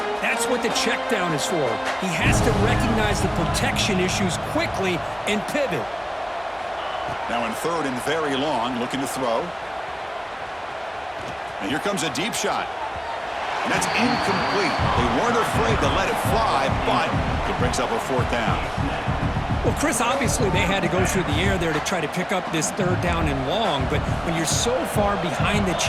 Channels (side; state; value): both; identical; correlation 1.00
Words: that's what the check down is for. He has to recognize the protection issues quickly and pivot. Now in 3rd and very long, looking to throw. And here comes a deep shot. And that's incomplete. They weren't afraid to let it fly, but it brings up a 4th down. Well, Chris, obviously they had to go through the air there to try to pick up this 3rd down and long, but when you're so far behind the